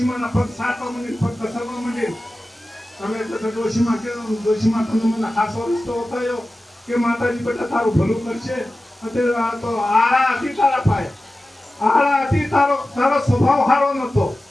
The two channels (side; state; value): both; normal; correlation 0.95